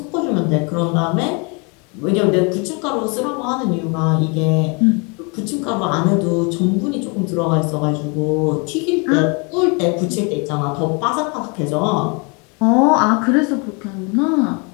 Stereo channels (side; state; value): right; quieter; 32.4 dB